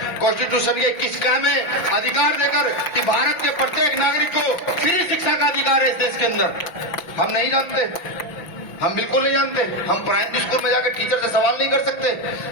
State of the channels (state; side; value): late; right; 5.9 ms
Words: कॉन्स्टिट्यूशन के 21 का में अधिकार देकर कि भारत के प्रत्येक नागरिक को फ्री शिक्षा का अधिकार है इस देश के अंदर। हम नहीं जानते, हम बिल्कुल नहीं जानते। हम प्राइमरी स्कूल में जाकर टीचर से सवाल नहीं कर सकते,